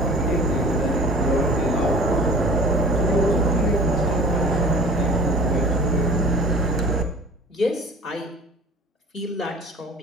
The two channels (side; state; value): both; normal; correlation 0.44